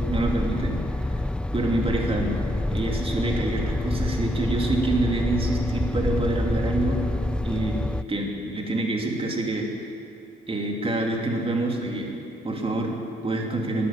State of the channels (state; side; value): normal; both; correlation 0.75